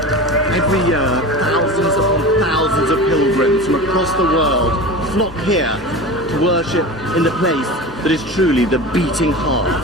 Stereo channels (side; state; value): both; normal; correlation 0.31